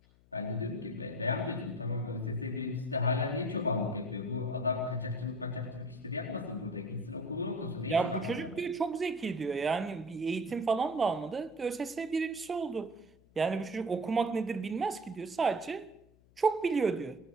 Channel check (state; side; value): noise; left; hum, 29 dB below the sound